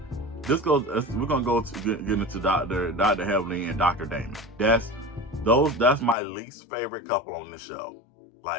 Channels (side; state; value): right; drops out; at 6.2 s